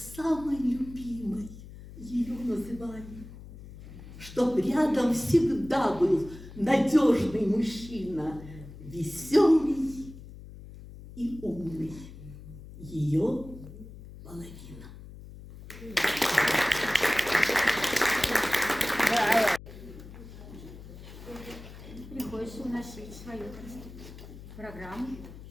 любимой ее называли, чтоб рядом всегда был надежный мужчина, веселый и умный, ее половина. Да, Люся уносить свою программу,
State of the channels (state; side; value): noise; left; hum, 15 dB below the sound